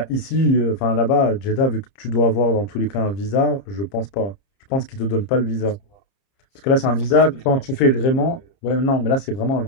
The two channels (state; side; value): late; right; 30 ms